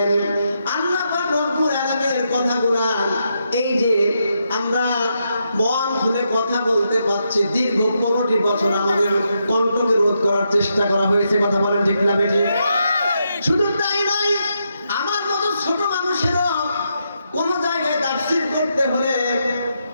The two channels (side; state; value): both; inverted; correlation -0.81